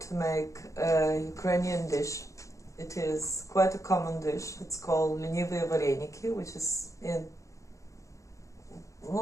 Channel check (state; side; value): late; right; 0.15 ms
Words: to make a Ukrainian dish. It is quite a common dish. It's called lenivые вареники, which is